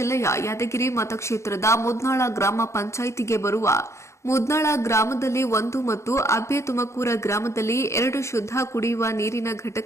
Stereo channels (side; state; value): right; late; 0.14 ms